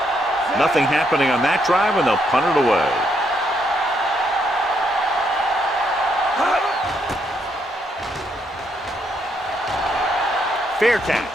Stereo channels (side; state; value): both; normal; correlation 0.75